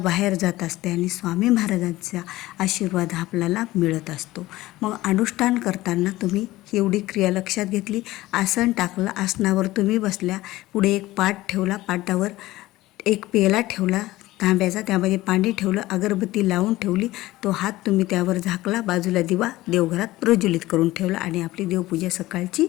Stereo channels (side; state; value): right; quieter; 17.4 dB